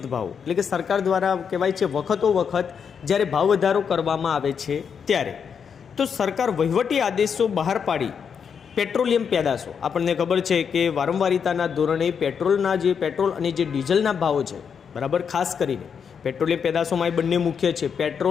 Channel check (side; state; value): right; quieter; 6.9 dB